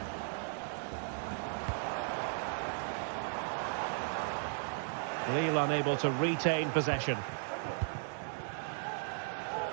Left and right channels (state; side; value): silent; left; 54 dB below the other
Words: Lille unable to retain possession.